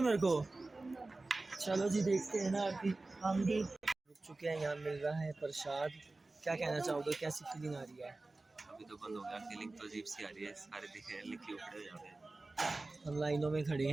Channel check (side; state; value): left; quieter; 3.2 dB